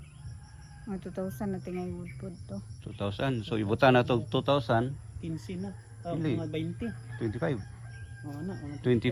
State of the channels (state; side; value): identical; both; correlation 1.00